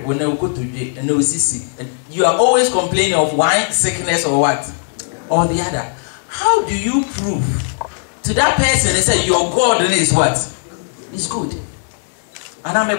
wo na ukotodwe and na osisi, you are always complaining of one sickness or what or the other. How do you prove to that person and say your God is what? Is good. And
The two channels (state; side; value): silent; right; 66 dB below the other